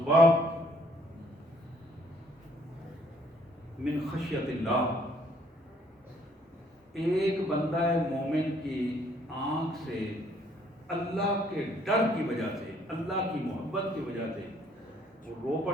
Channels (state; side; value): normal; both; correlation 0.64